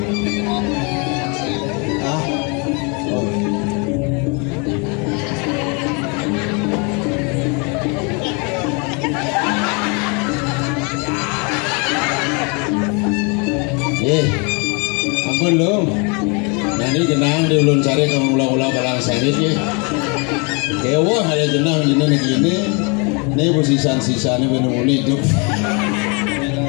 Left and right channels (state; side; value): quieter; right; 32.7 dB